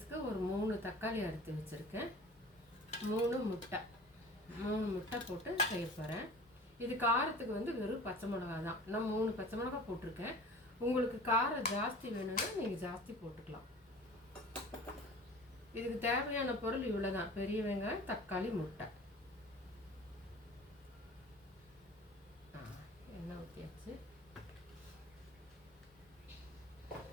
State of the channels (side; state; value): both; normal; correlation 0.42